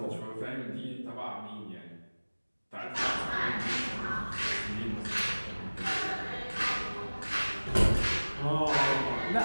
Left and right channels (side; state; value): both; inverted; correlation -1.00